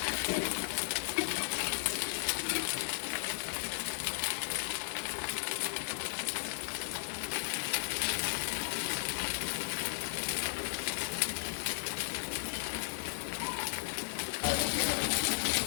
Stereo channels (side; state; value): right; silent; digital silence